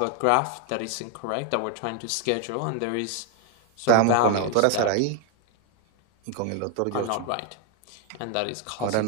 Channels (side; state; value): both; different; correlation 0.01